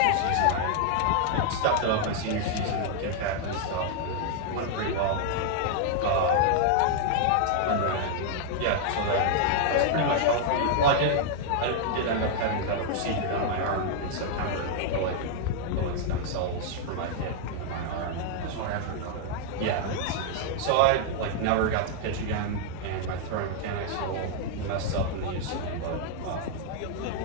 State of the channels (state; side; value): different; both; correlation -0.01